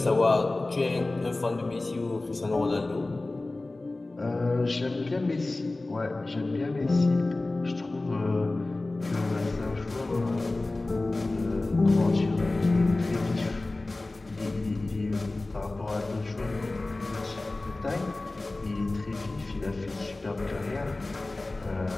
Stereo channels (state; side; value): quieter; right; 3.0 dB